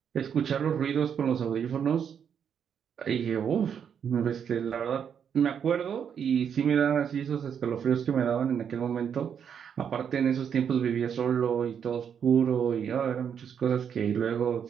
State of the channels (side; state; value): left; quieter; 7.8 dB